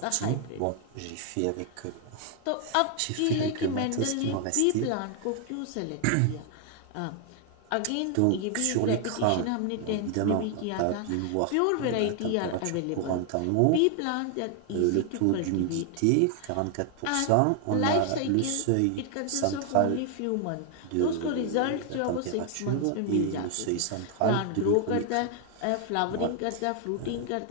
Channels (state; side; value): different; both; correlation 0.00